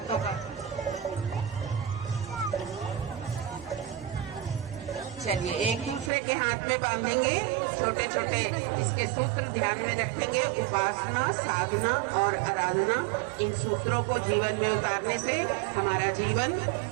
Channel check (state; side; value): drops out; left; at 6.1 s